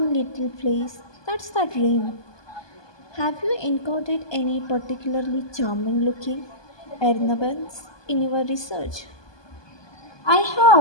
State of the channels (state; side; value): late; right; 1.2 ms